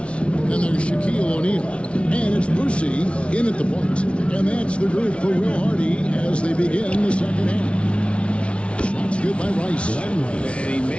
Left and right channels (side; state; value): right; late; 0.060 ms